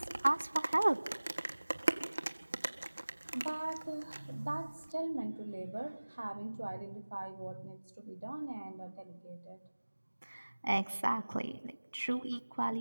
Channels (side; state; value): both; inverted; correlation -1.00